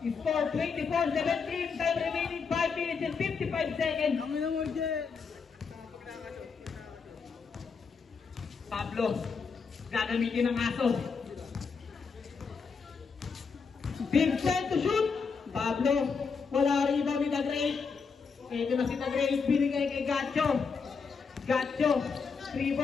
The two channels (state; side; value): quieter; right; 5.4 dB